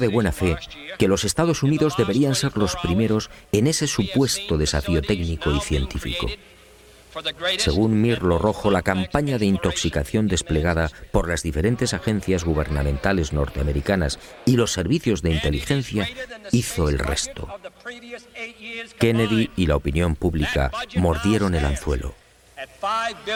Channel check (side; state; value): both; identical; correlation 1.00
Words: buena fe que los Estados Unidos deberían ser los primeros en ese supuesto desafío técnico y científico. Según Mirlo Rojo, la campaña de intoxicación desplegada por las diferentes agencias gubernamentales norteamericanas y los servicios de inteligencia hizo el resto. Kennedy y la opinión pública mordieron el anzuelo.